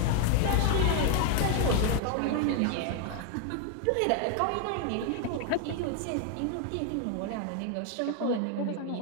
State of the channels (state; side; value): different; both; correlation 0.00